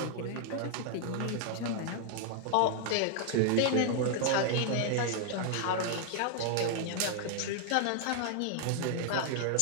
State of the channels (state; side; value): different; both; correlation 0.00